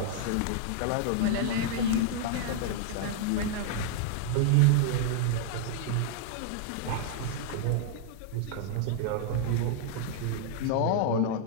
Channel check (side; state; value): both; different; correlation -0.01